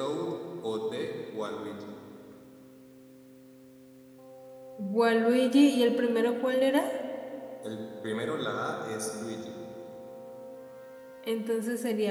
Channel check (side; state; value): both; identical; correlation 1.00